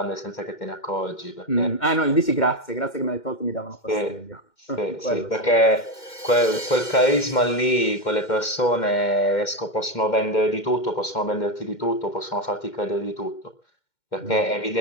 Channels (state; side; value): late; right; 2.1 ms